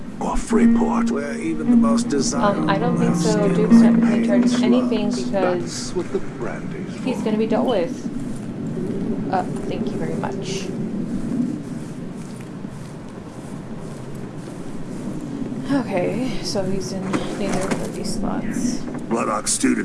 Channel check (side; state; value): both; identical; correlation 1.00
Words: or Freeport, where even the most desirable. I don't think so. Duke's not in charge of anything because what the brandy's he's going to be dealt with. Thank you very much. so he's in neither of these slots. Bloodhawk stew